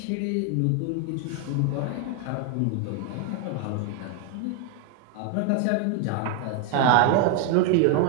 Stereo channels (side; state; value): both; different; correlation 0.01